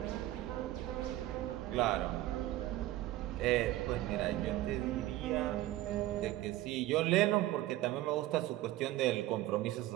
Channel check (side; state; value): left; quieter; 15.8 dB